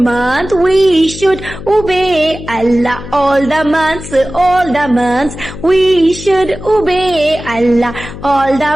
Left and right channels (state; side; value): noise; left; hum, 12 dB below the sound